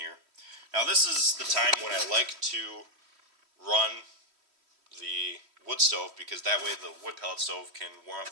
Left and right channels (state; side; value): late; left; 3.1 ms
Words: Now this is the time when I like to run the wood stove, because that way the wood pellet stove can warm